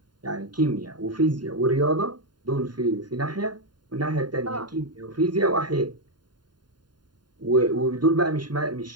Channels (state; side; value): late; left; 0.71 ms